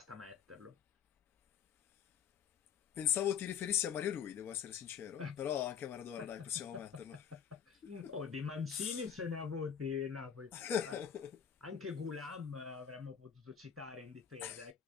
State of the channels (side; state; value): right; quieter; 7.9 dB